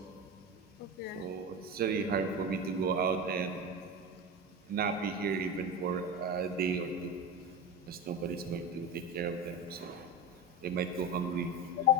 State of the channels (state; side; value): normal; both; correlation 0.23